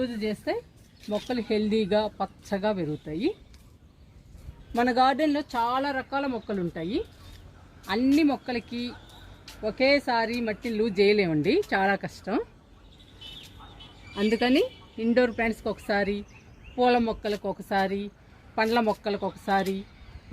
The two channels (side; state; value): both; identical; correlation 1.00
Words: చేస్తే మొక్కలు హెల్దీగా పచ్చగా పెరుగుతాయి. మన గార్డెన్లో చాలా రకాల మొక్కలు ఉంటాయి. అన్ని మొక్కలకి ఒకేసారి మట్టిని లూజ్ చేయలేమండి, చాలా కష్టం. అందుకని ఇండోర్ ప్లాంట్స్కి ఒకసారి, పూల మొక్కలకు ఒకసారి, పండ్ల మొక్కలకు ఒకసారి,